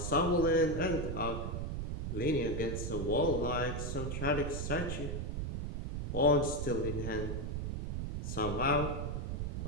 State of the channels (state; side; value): noise; right; rumble, 3 dB below the sound